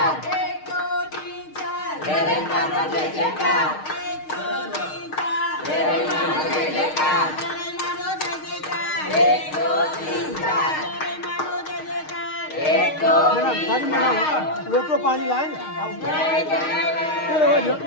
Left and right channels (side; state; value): right; late; 6.5 ms